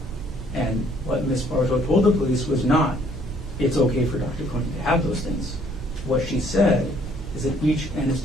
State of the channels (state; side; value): normal; both; correlation 0.62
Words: And what Ms. Bartow told the police was not, it's okay for Dr. Konig to have those things. What she said is that each